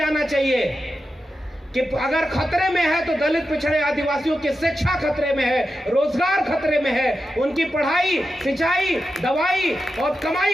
चाहिए कि अगर खतरे में है तो दलित पिछड़े आदिवासियों की शिक्षा खतरे में है, रोजगार खतरे में है, उनकी पढ़ाई, सिंचाई, दवाई और कमाई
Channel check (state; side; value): normal; both; correlation 0.90